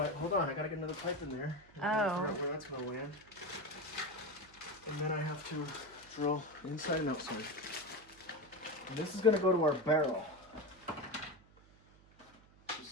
Hold on, I gotta get another pipe in there. I Oh. gotta figure out where that's gonna land. And then I have to drill inside and outside. And this is gonna go to our barrel. Just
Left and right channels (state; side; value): noise; right; hum, 26 dB below the sound